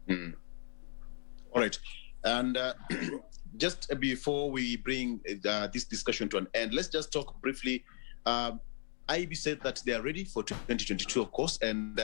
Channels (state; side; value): silent; right; digital silence